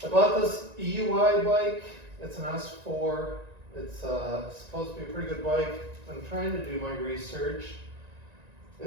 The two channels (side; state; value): left; late; 1.9 ms